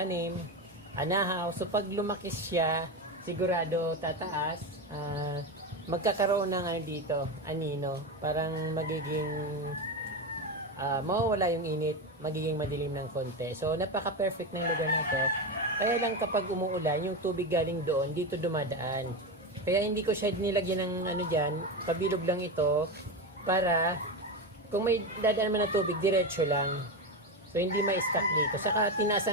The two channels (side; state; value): both; normal; correlation 0.16